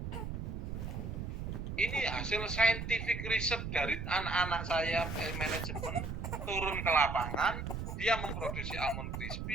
Ini hasil scientific research dari anak-anak saya manajemen, turun ke lapangan, dia memproduksi Almond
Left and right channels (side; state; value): right; noise; rumble, 5 dB below the sound